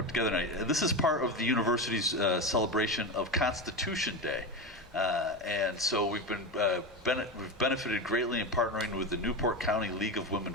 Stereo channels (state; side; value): normal; both; correlation 0.19